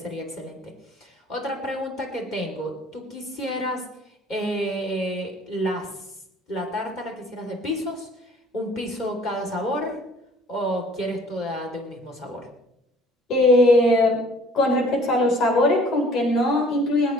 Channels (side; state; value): both; normal; correlation 0.54